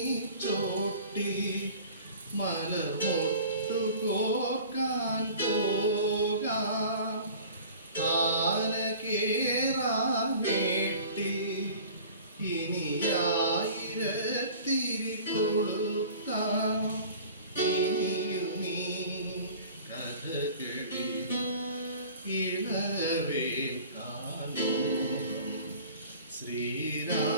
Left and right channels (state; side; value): inverted; both; correlation -0.44